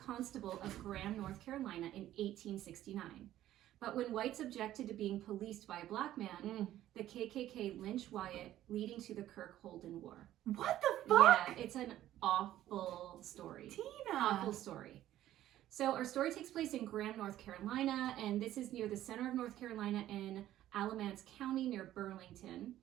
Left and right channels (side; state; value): left; quieter; 13.2 dB